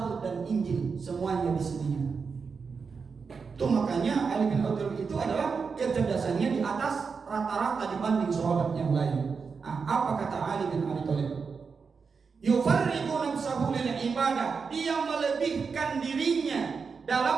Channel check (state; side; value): quieter; left; 5.3 dB